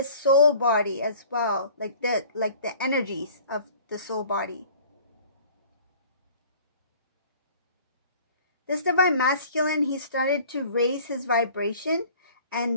soul body as well, like the energies of the soul body. This divine masculine, he started to raise his vibration,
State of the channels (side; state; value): both; inverted; correlation -0.49